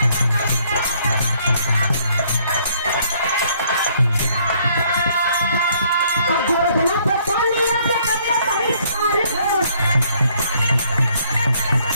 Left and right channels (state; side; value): inverted; both; correlation -0.65